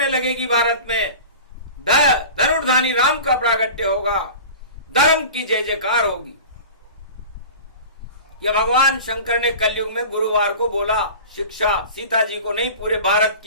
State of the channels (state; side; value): inverted; both; correlation -0.37